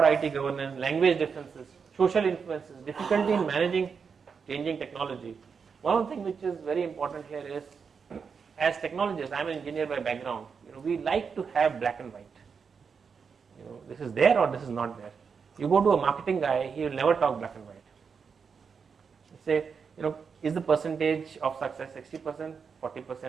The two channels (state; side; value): quieter; left; 5.9 dB